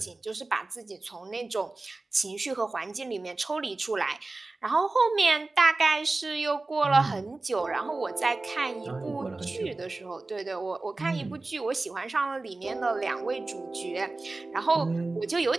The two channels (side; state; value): left; quieter; 3.3 dB